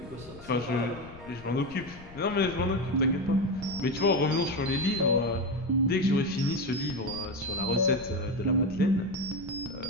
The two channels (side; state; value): left; noise; rumble, 18 dB below the sound